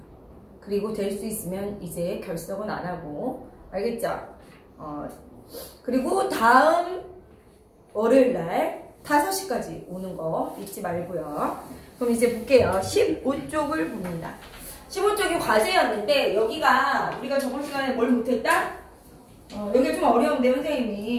그리고 될 수 있으면 이제 결석은 안 하고, 알겠죠? 그리고 다음 월요일날 5시까지 오는 거 잊지 말고요. 그럼 이제 볼게요. 15쪽을 봅니다. 15쪽이 과제였는데 여기가 우리가 저번 시간에 뭘 못했다? 여기가 좀 어려운데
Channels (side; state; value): both; identical; correlation 1.00